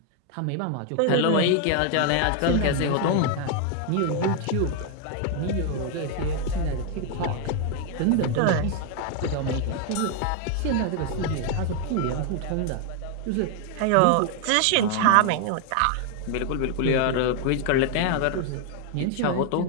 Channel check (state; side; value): different; both; correlation 0.00